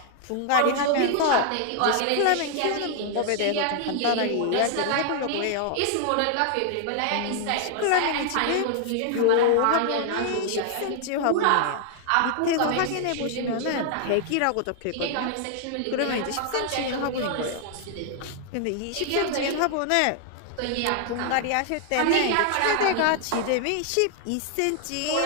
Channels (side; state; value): both; different; correlation 0.00